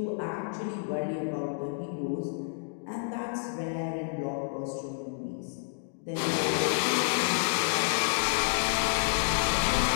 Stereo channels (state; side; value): silent; right; digital silence